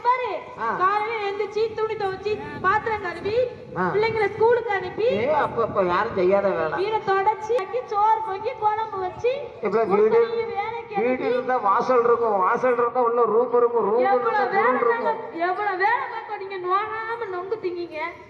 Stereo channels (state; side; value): identical; both; correlation 1.00